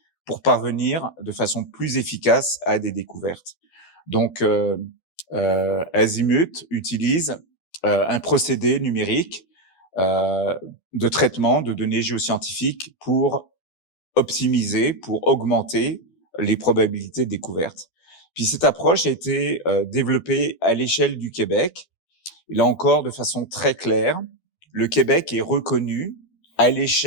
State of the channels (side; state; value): right; late; 12 ms